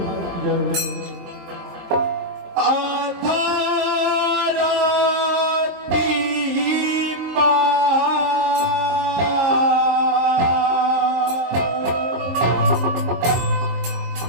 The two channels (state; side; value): late; left; 23 ms